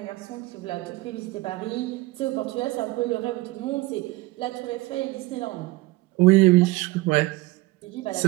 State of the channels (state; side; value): quieter; left; 20.6 dB